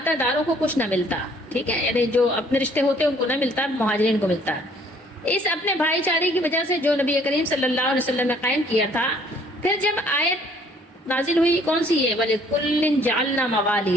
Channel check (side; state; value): both; normal; correlation 0.60